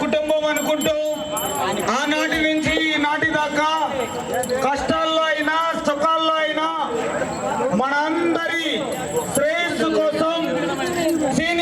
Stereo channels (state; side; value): identical; both; correlation 1.00